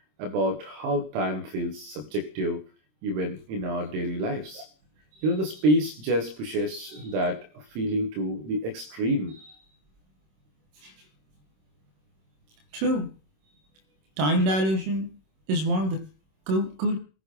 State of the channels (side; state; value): left; late; 26 ms